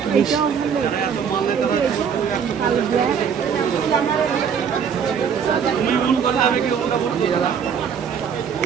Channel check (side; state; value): left; quieter; 7.2 dB